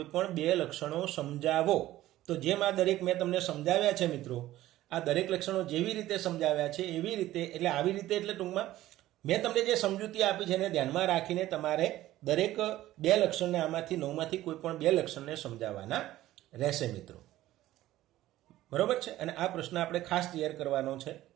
પણ બે લક્ષણો સમજાવો. તો જેમ આ દરેક મેં તમને સમજાવ્યા છે મિત્રો, આ દરેક લક્ષણો જેવી રીતે સમજાવ્યા છે એવી રીતે, એટલે આવી રીતે એટલે ટૂંકમાં મેં તમને જે સમજૂતી આપી છે એને ધ્યાનમાં રાખીને તમારે દરેક બે લક્ષણને આમાંથી 9માંથી કોઈ પણ બે લક્ષણને સમજાવવાના રહેશે મિત્રો. બરોબર છે? અને આ પ્રશ્ન આપણે ખાસ તૈયાર કરવાનો છે.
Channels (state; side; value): quieter; left; 15.0 dB